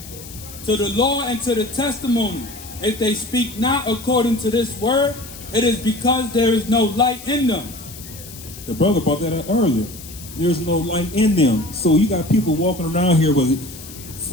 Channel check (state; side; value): noise; left; hiss, 15 dB below the sound